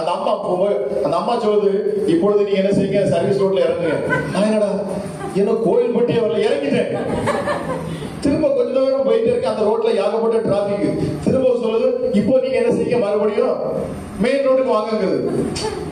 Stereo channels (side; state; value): both; identical; correlation 1.00